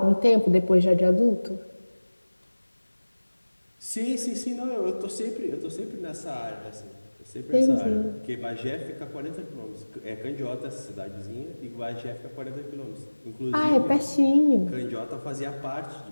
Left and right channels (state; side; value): inverted; both; correlation -1.00